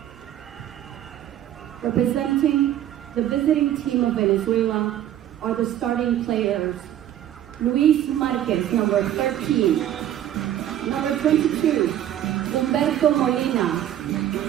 Representing the visiting team of Venezuela are the starting players: Luis Marquez, number 13, number 22, Humberto Molina,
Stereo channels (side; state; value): left; quieter; 11.8 dB